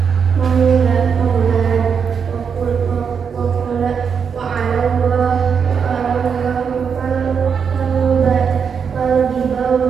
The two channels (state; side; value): quieter; left; 6.6 dB